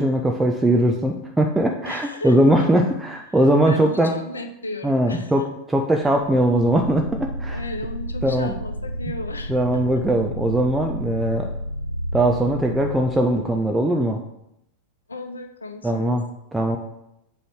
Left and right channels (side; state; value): both; normal; correlation 0.63